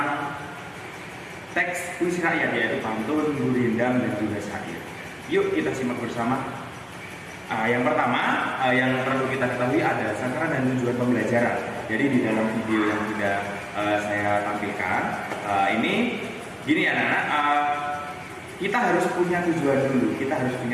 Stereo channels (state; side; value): identical; both; correlation 1.00